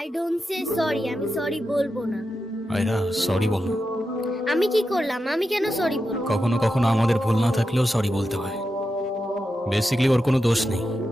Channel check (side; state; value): both; normal; correlation 0.89